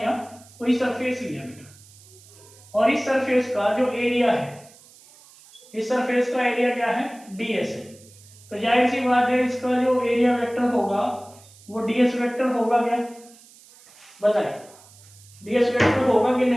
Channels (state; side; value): noise; right; hiss, 24 dB below the sound